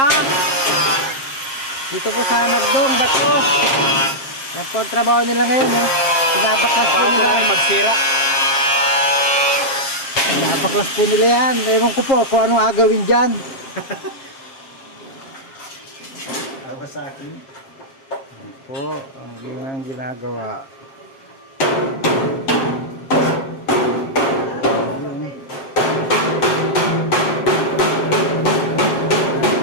Dito po sa Nagdong, Bato. Yan po ang trabaho nila ngayon. Pinabaklas po nila. magsira. Pinabaklas po nila yan. Ewan ko po kung anong agawin dyan. Awa sa akin. Yan po ang ginagawa.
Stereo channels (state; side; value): late; right; 7.5 ms